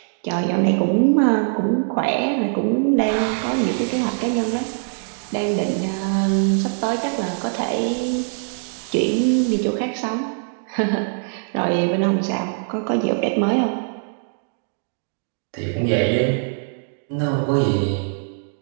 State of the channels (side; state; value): left; silent; digital silence